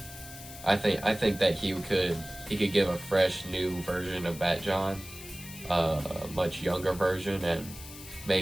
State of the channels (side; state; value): left; noise; hiss, 14 dB below the sound